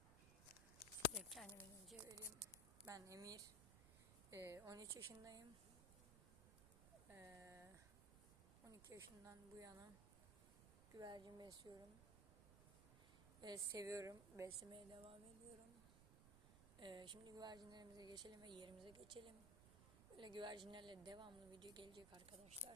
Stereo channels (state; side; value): noise; right; rumble, 14 dB below the sound